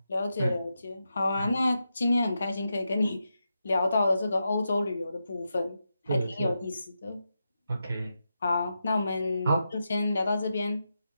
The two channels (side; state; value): both; inverted; correlation -0.87